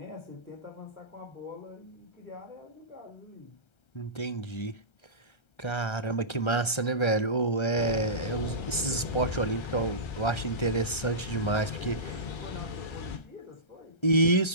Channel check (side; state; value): right; late; 1.3 ms